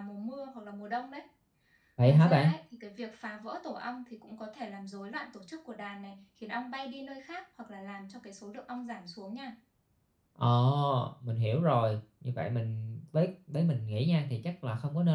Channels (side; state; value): both; identical; correlation 1.00